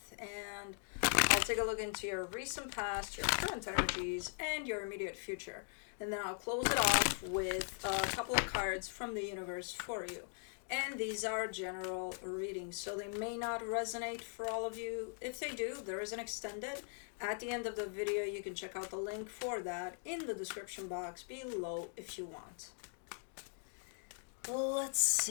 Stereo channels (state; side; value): silent; right; 51 dB below the other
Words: And I'll take a look into your recent past, your current energies, and your immediate future. And then I'll close it off with a couple of cards from the universe for you. And these are general readings, so they may not resonate for all of you. If they do, there is an extended. At the end of the video, you can check out the link for that in the description box below if you want. Let's